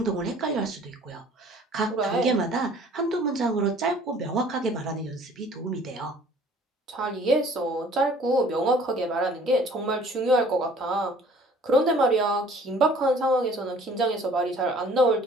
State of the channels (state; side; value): normal; both; correlation 0.53